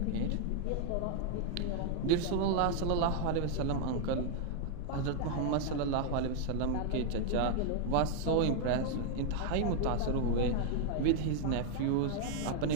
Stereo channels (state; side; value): different; both; correlation 0.00